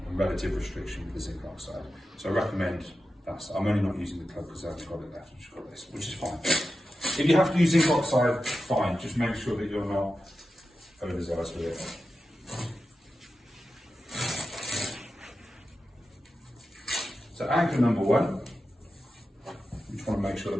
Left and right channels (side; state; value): both; normal; correlation 0.92